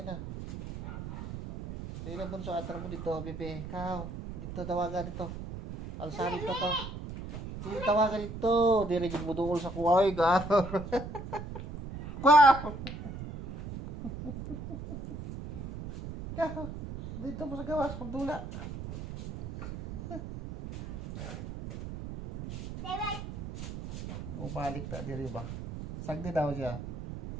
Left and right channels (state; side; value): noise; right; rumble, 9 dB below the sound